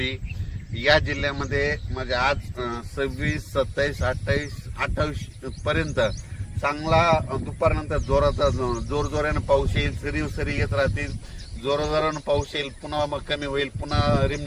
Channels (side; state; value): both; identical; correlation 1.00